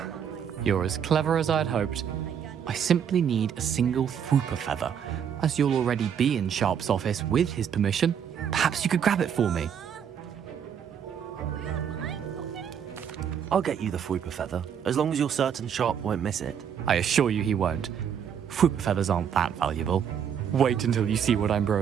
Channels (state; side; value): quieter; left; 8.2 dB